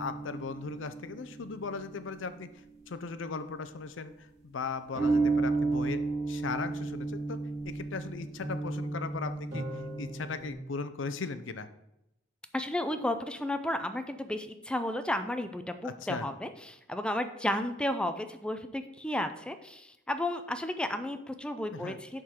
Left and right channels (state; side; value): normal; both; correlation 0.70